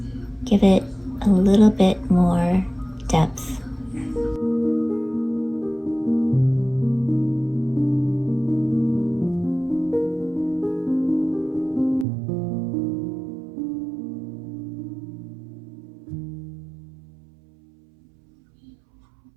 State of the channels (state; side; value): drops out; left; at 12.1 s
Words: give it a little bit more depth.